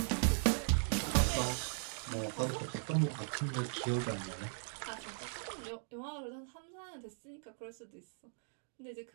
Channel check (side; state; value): left; silent; digital silence